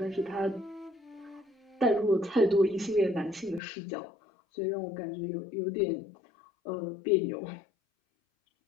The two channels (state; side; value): drops out; right; at 3.6 s